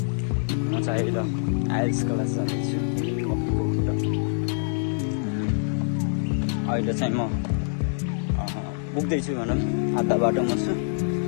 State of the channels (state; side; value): silent; right; digital silence